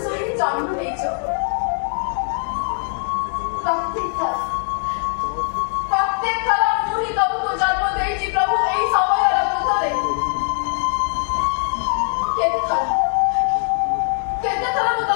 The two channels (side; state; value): right; silent; digital silence